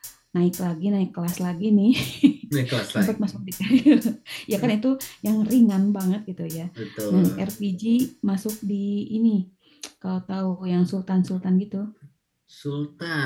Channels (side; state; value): both; identical; correlation 1.00